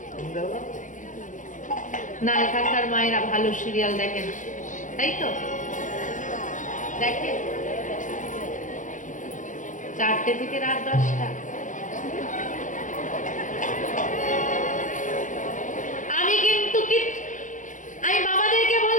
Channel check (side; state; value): right; late; 0.37 ms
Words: দেখা। না, এখানকার মায়েরা ভালো সিরিয়াল দেখে না, তাই তো? দেখে 4টে থেকে রাত 10টা। আমি বাবাদেরকে